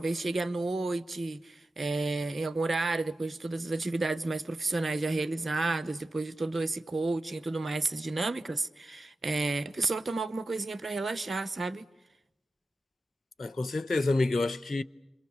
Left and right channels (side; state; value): both; normal; correlation 0.92